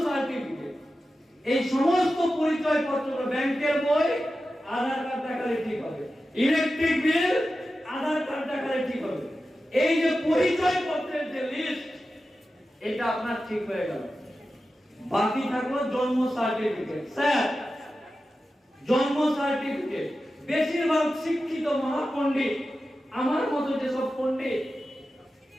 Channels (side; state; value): both; normal; correlation 0.93